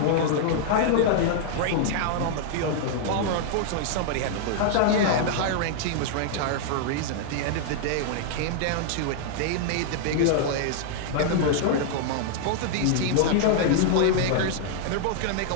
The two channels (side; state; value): both; different; correlation -0.01